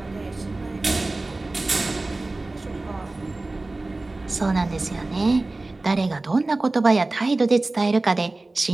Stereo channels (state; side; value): quieter; left; 3.1 dB